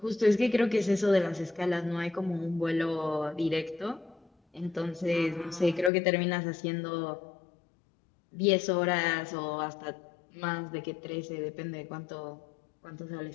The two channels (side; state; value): right; drops out; at 5.9 s